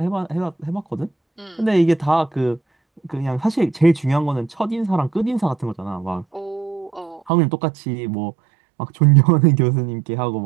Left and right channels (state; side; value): drops out; left; at 7.3 s